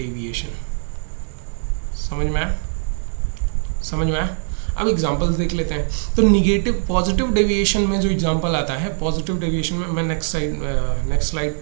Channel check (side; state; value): left; silent; 65 dB below the other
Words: समझ में आया, समझ में आया। अब एग्जांपल्स देख लेते हैं। तो निगेटिव, पॉजिटिव डेविएशन में जो एग्जांपल आता है, पॉजिटिव डेविएशन में मैं नेक्स्ट स्लाइड